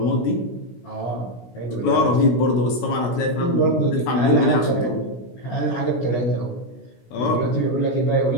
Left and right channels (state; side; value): late; right; 16 ms